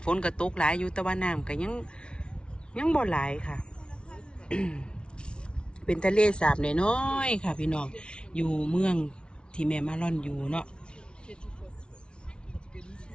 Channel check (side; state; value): right; late; 0.057 ms